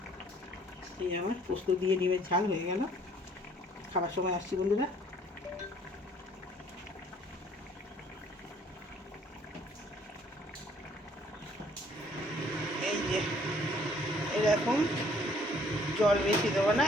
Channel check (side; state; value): both; normal; correlation 0.60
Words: এই আমার পোস্ত দিয়ে ডিমের ঝাল হয়ে গেল। খাবার সময় আসছি বন্ধুরা। এই যে এরকম জল বেশি দেবো না,